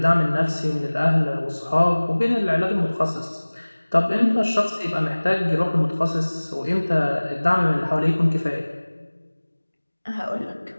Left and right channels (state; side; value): inverted; both; correlation -1.00